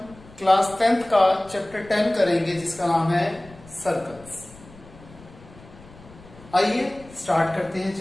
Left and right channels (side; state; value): left; noise; rumble, 21 dB below the sound